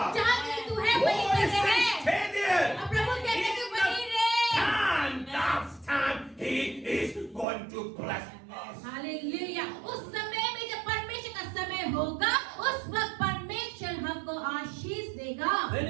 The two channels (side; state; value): left; drops out; at 7.5 s